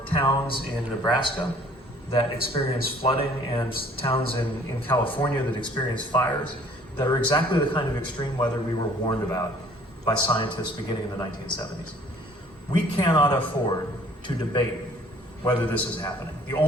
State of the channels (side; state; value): both; normal; correlation 0.56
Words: towns in Nebraska that experience flooding and towns in California that experience fires that are exactly the kind of extreme weather we were warned about by scientists beginning in the 1970s. We cannot afford to debate whether this is happening. The